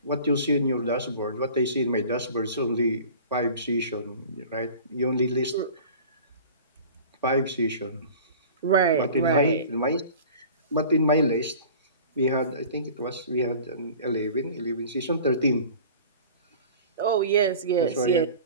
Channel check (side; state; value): both; inverted; correlation -0.42